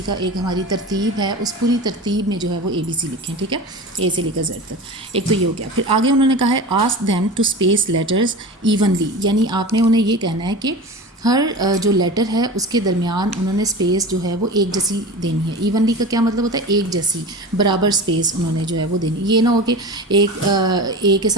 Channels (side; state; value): both; normal; correlation 0.32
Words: کا ایک ہماری ترتیب ہے، اس پوری ترتیب میں جو ہے وہ ABC لکھیں. ٹھیک ہے، A سے لے کر Z تک. ایک تو یہ ہو گیا. پھر آگے انہوں نے کہا ہے ask them to space letters evenly. یعنی آپ نے انہیں یہ کہنا ہے کہ ہر جو لیٹر ہے اس کے درمیان انہوں نے اسپیس جو ہے وہ ایک جیسی دینی ہے. ایونلی کا کیا مطلب ہوتا ہے؟ ایک جیسی، برابر اسپیس انہوں نے جو ہے وہ دینی. یہ نہ ہو کہ ایک A کے